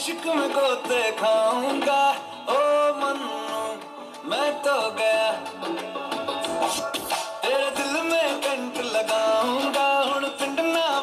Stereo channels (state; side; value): identical; both; correlation 1.00